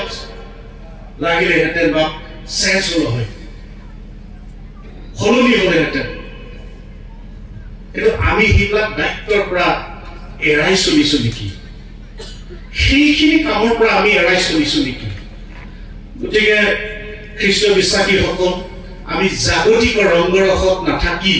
লাগিলেহেঁতেন বা চেঞ্জ হ'ল হয় সলনি হ'লেহেঁতেন কিন্তু আমি সেইবিলাক দায়িত্বৰ পৰা এৰাই চলিছো নেকি সেইখিনি কামৰ পৰা আমি এৰাই চলিছো নেকি গতিকে খ্ৰীষ্ট বিশ্বাসীসকল আমি জাগতিক ৰংগৰসত নাথাকি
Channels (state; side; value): identical; both; correlation 1.00